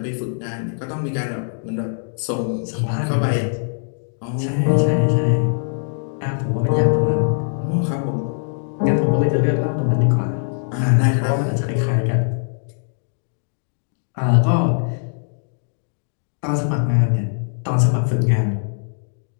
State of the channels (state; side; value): silent; right; digital silence